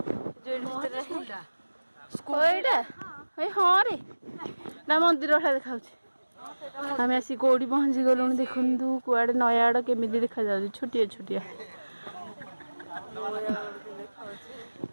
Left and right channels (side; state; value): both; inverted; correlation -1.00